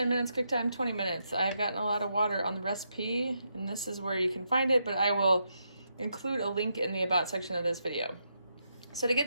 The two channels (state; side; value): inverted; both; correlation -0.81